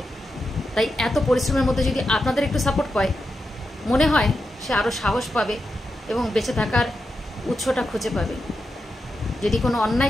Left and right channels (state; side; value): normal; both; correlation 0.87